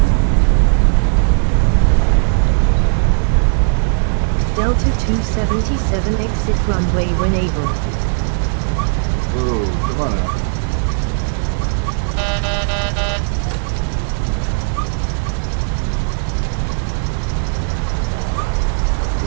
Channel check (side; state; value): left; silent; 68 dB below the other